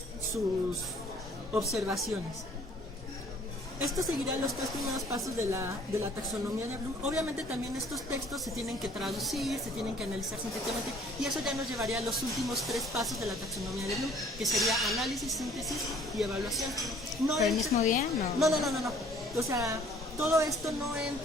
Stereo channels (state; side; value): normal; both; correlation 0.56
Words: sus observaciones. Esto seguirá los 3 primeros pasos de la taxonomía de Bloom. Obviamente también estos textos se tienen que traducir, se tienen que analizar sintéticamente, y eso ya nos llevaría a los últimos 3 pasos de la taxonomía de Bloom, que sería análisis, síntesis y evaluación. ¿Pero el mismo día? No. O sea, todo esto no